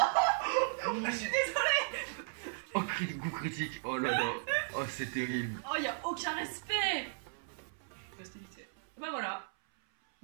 Je suis désolée. Oh, coup critique. Oh là là. Oh, c'est terrible. Oh, y'a aucun respect. Bah voilà.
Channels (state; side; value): silent; left; 54 dB below the other